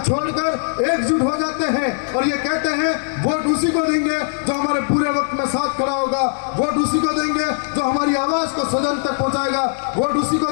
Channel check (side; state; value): right; silent; digital silence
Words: एकजुट हो जाते हैं और ये कहते हैं वोट उसी को देंगे जो हमारे पूरे वक्त में साथ खड़ा होगा, वोट उसी को देंगे जो हमारी आवाज को सदन तक पहुंचाएगा, वोट उसी को